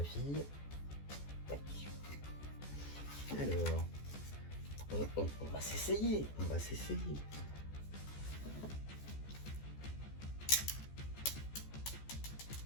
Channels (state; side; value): late; right; 14 ms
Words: fille. Tac. Alors, on va s'essayer, on va s'essayer.